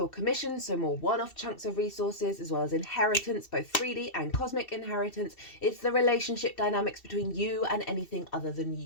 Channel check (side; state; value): right; late; 2.7 ms